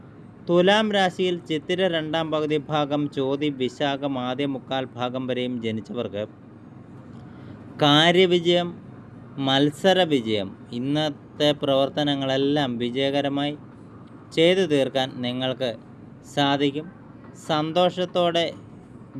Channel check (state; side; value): identical; both; correlation 1.00